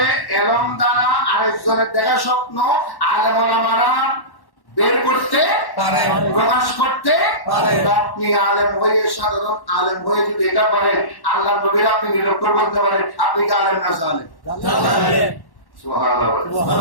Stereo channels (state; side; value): late; right; 1.1 ms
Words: এলম দ্বারা আরেকজনের দেখা স্বপ্ন আলেম ওলামারা বের করতে পারে, প্রকাশ করতে পারে। আপনি আলেম হয়ে, সাধারণ আলেম হয়ে যদি এটা পারেন, আল্লাহ নবীর আপনি নিরক্ষর করতে পারেন, আপনি কি আলেম না জানেন?